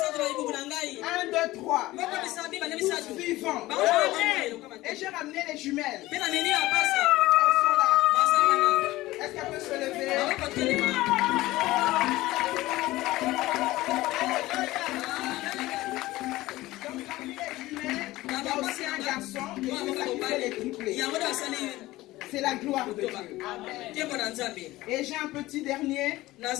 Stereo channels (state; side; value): quieter; right; 17.9 dB